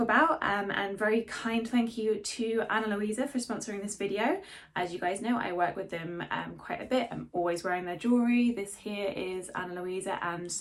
and very kind thank you to Ana Luisa for sponsoring this video. As you guys know, I work with them quite a bit. I'm always wearing their jewellery. This here is Ana Luisa, and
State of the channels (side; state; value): both; identical; correlation 1.00